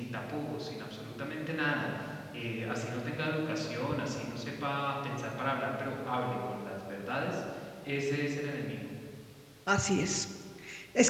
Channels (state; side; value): identical; both; correlation 1.00